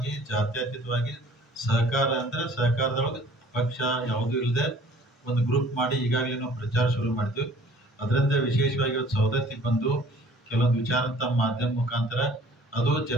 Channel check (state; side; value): normal; both; correlation 0.51